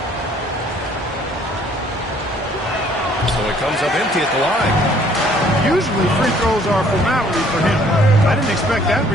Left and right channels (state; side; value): normal; both; correlation 0.60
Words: So it comes up empty at the line. Usually free throws are a formality for him. I didn't expect that